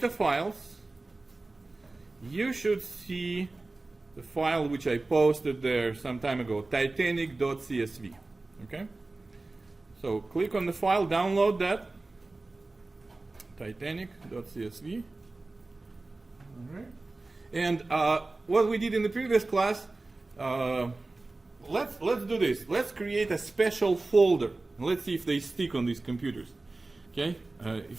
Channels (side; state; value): left; quieter; 3.2 dB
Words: Files, you should see the file which I posted there some time ago, titanic.csv. Okay? So click on the file, download that, titanic.csv. All right. And what we did in the previous class, let's do this. Let's create a special folder. Let's see if they stick on these computers. Okay,